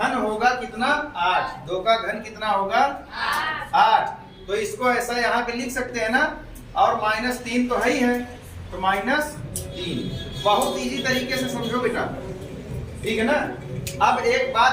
होगा कितना? 8। 2 का घन कितना होगा? 8। तो इसको ऐसा यहाँ पे लिख सकते हैं ना, और -3 तो है ही है, तो -3। बहुत इजी तरीके से समझो बेटा, ठीक है ना। अब एक बात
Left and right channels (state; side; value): identical; both; correlation 1.00